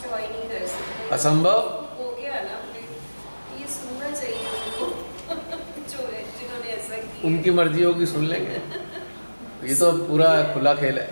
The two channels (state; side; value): inverted; both; correlation -1.00